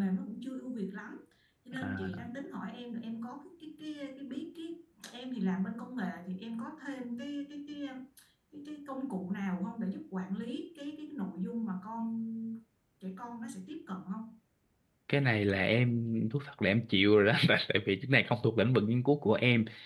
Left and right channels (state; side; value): identical; both; correlation 1.00